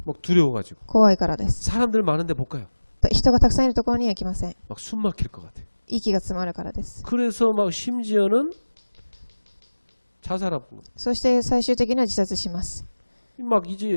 막 두려워가지고. 怖いからです。 사람들 많은데 못 가요. 人がたくさんいるところには行きません。 막 숨 막힐 것 같아요. 息が詰まるからです。 그래서 막 심지어는 자살하고 そして最終的には自殺します。 막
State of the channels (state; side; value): inverted; both; correlation -1.00